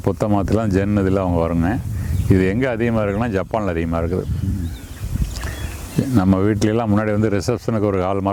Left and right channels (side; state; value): both; identical; correlation 1.00